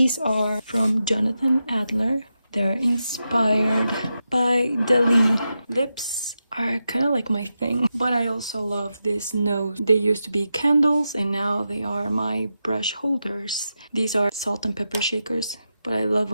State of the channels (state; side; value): inverted; both; correlation -0.89